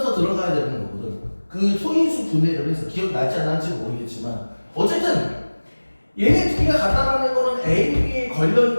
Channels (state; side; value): inverted; both; correlation -1.00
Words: 들어가야 되는 거거든. 그 소인수 분해를 해서 기억날지 안 날지 모르겠지만 어쨌든 얘네 둘이가 같다라는 거는 A, B에